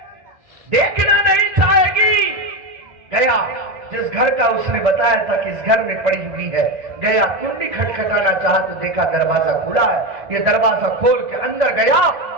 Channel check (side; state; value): left; late; 1.6 ms